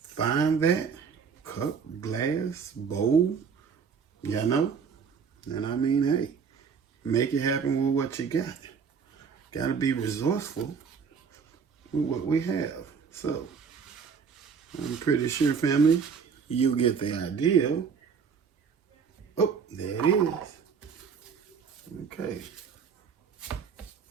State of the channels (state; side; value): quieter; left; 6.3 dB